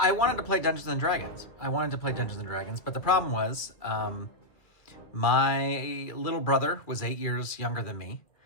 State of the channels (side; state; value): right; late; 2.4 ms